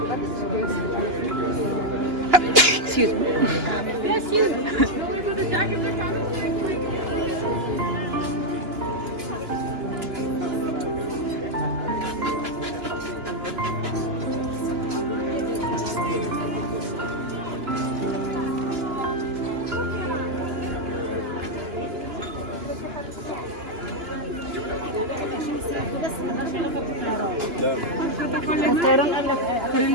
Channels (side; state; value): left; late; 2.9 ms